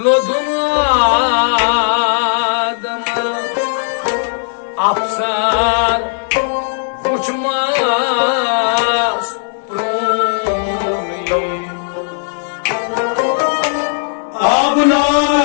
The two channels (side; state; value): right; silent; digital silence